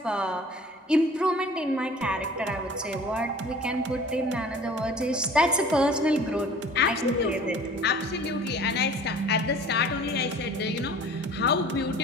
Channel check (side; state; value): both; normal; correlation 0.46